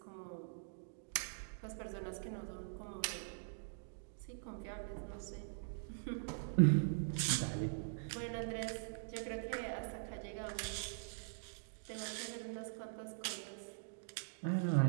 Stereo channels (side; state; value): left; silent; digital silence